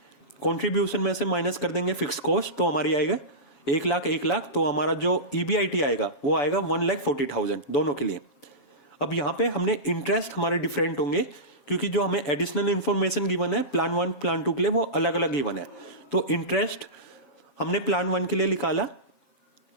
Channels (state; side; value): late; right; 7.3 ms